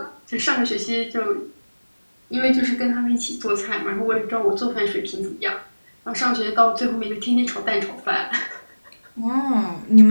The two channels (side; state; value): both; inverted; correlation -1.00